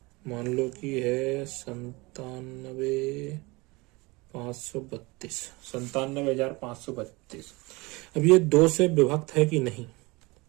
मान लो कि है 97,532। अब ये 2 से विभक्त है कि नहीं,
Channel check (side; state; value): left; quieter; 24.2 dB